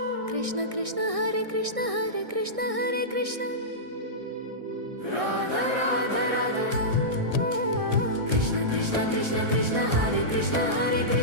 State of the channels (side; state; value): left; late; 1.6 ms